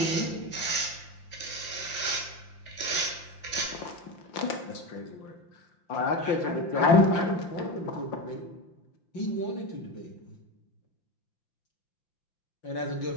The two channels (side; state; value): right; late; 5.8 ms